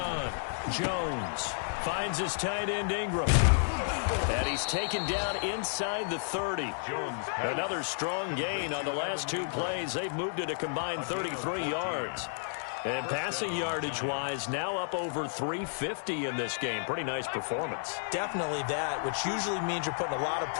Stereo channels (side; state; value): right; silent; digital silence